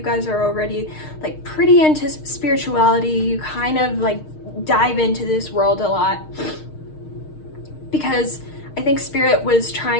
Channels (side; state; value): right; late; 6.5 ms